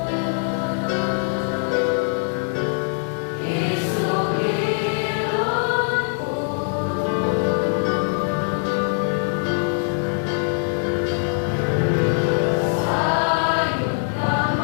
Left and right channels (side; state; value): right; silent; 63 dB below the other